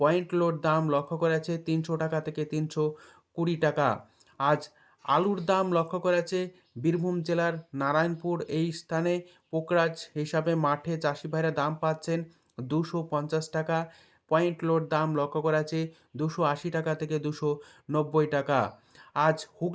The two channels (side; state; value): both; identical; correlation 1.00